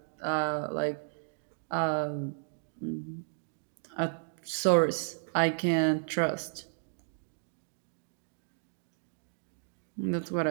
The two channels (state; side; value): silent; left; digital silence